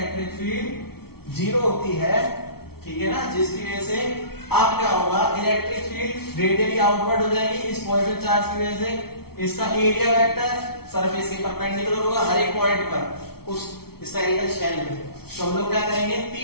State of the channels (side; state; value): right; late; 0.95 ms